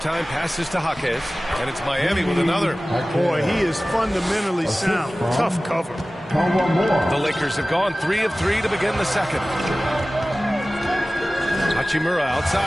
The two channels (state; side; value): normal; both; correlation 0.97